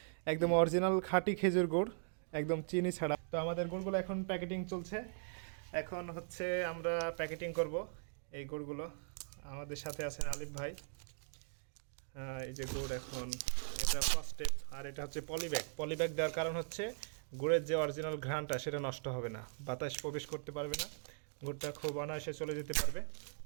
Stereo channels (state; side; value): silent; left; digital silence